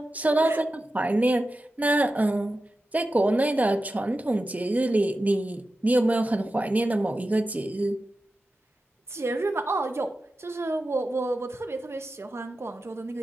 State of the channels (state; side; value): normal; both; correlation 0.92